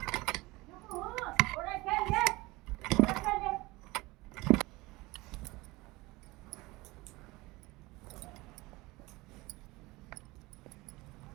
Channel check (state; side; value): quieter; left; 21.8 dB